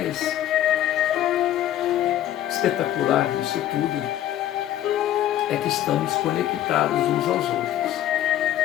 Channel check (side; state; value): right; quieter; 12.5 dB